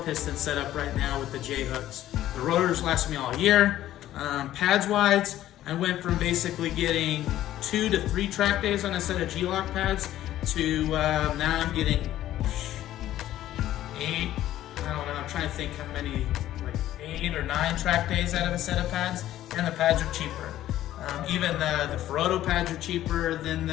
setup right now with the J-hooks. The rotors last me all year. Pads wise, I went from basically getting 2 to 3 track days on a set of G-lock pads to now I'm getting 8. I don't know, I'm trying to think how many, like 8 or 9 track days out of a set of pads, and the pads are cheaper. Even the Ferodo pads are cheaper than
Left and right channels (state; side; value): quieter; right; 13.3 dB